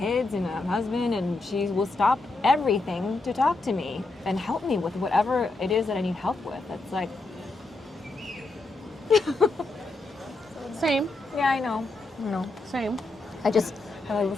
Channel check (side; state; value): right; quieter; 3.2 dB